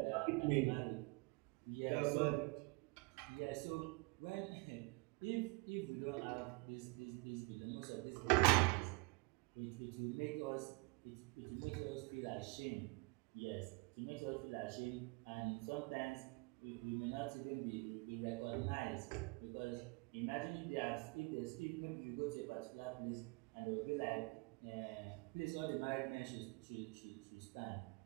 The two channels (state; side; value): quieter; left; 28.1 dB